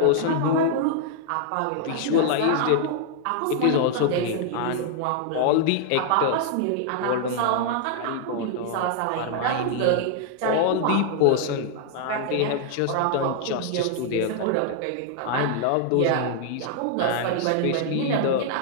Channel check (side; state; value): both; different; correlation 0.00